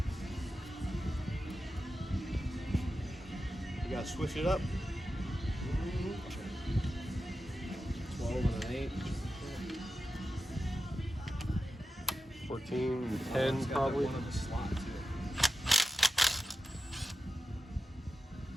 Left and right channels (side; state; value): both; normal; correlation 0.90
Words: You gotta switch it up. 12 and an 8. 14, 10 probably. One in the slot too.